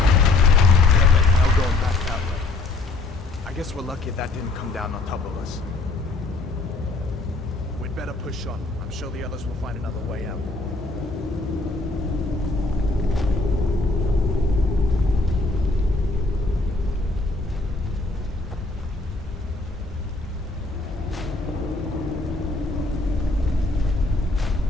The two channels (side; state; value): right; quieter; 3.2 dB